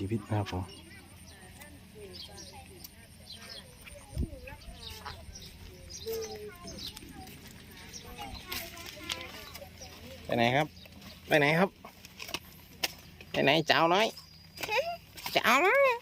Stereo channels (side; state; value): both; identical; correlation 1.00